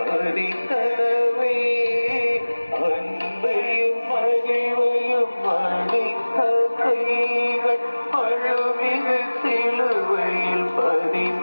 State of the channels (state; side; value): inverted; both; correlation -1.00